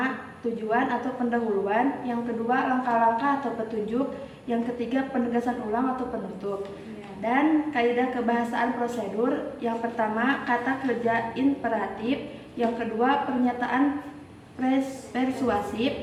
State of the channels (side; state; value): both; identical; correlation 1.00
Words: tujuan atau pendahuluan. Yang kedua, langkah-langkah atau petunjuk. Yang ketiga, penegasan ulang atau penutup. Dan kaidah kebahasaan prosedur. Yang pertama, kata kerja imperatif. Yang kedua, pernyataan persuasif.